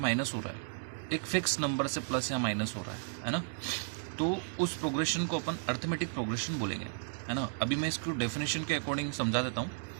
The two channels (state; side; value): silent; left; digital silence